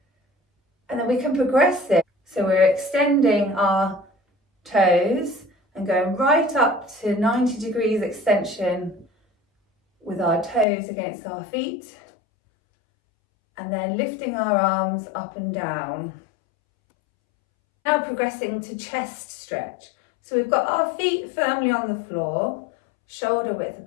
and then we can progress this. So we're extending our toes and going right up to 90 degrees extension with our toes against our feet, and then lifting our arms up and down. Now progressing to chest stretch. So we've got our feet firmly on the floor, shoulder width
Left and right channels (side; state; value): right; drops out; at 10.7 s